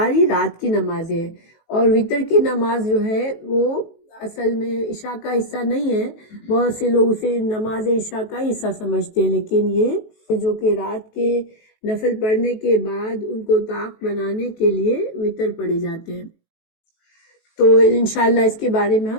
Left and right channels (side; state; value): right; late; 18 ms